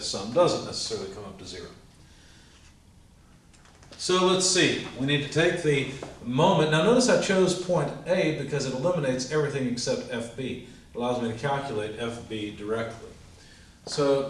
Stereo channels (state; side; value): identical; both; correlation 1.00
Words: sum doesn't necessarily come up to 0. So let's see, we need to take the moment. Now notice I chose point A because it eliminates everything except FB. It allows me to calculate FB directly. So